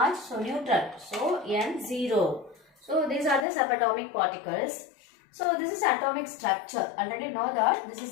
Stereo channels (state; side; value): drops out; right; at 3.5 s